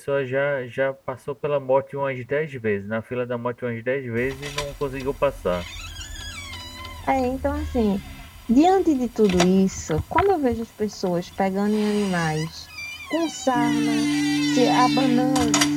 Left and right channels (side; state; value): both; identical; correlation 1.00